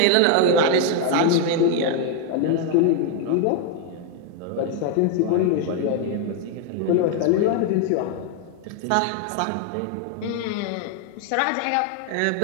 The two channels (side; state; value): both; different; correlation 0.01